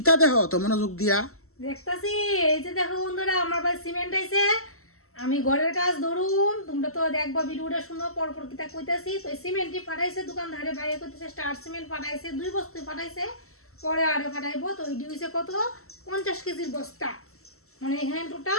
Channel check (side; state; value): right; late; 0.63 ms